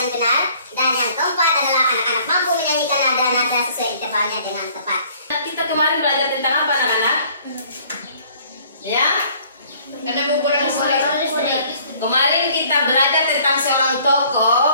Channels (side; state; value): both; inverted; correlation -0.57